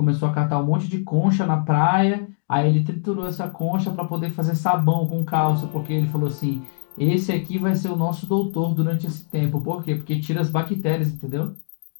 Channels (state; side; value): silent; right; digital silence